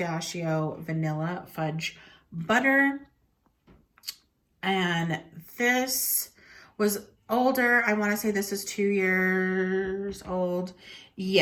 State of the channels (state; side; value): identical; both; correlation 1.00